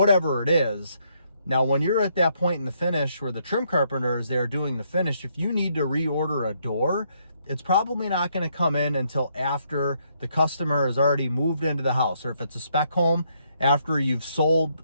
it is. Now, when you're at that point in the finish where the trim carpenter is there doing the finish, if you need to reorder a door, it's probably not going to come in until after the customer has already moved into the house, or if it's a spec home, after you've sold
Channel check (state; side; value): inverted; both; correlation -0.73